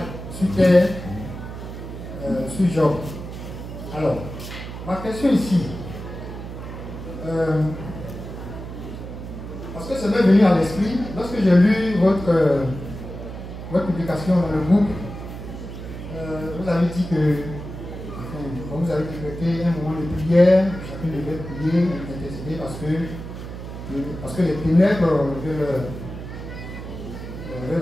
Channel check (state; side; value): noise; right; hum, 10 dB below the sound